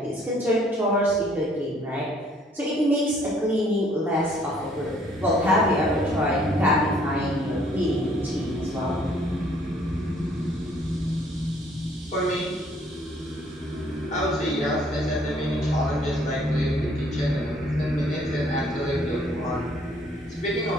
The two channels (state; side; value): normal; both; correlation 0.62